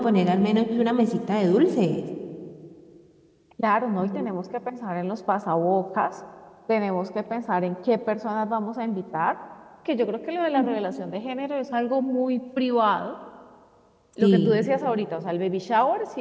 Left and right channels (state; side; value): identical; both; correlation 1.00